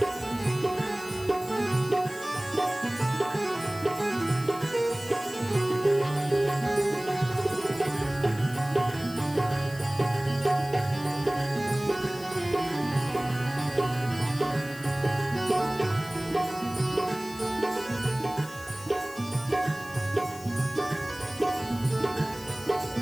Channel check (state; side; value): noise; left; hiss, 17 dB below the sound